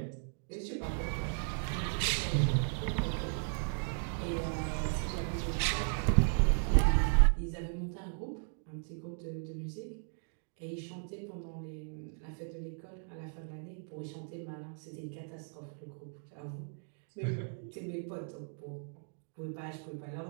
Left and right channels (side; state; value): left; silent; 54 dB below the other